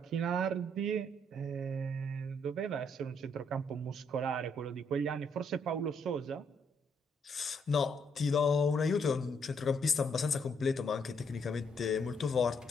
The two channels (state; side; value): normal; both; correlation 0.72